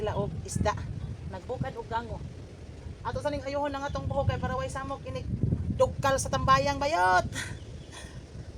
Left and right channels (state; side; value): identical; both; correlation 1.00